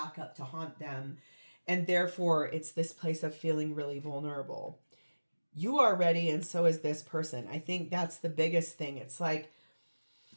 up to haunt them. And therefore, it's this place of feeling really vulnerable. You are ready, and so is this person. I think that's the biggest thing. It's like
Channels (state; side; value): inverted; both; correlation -1.00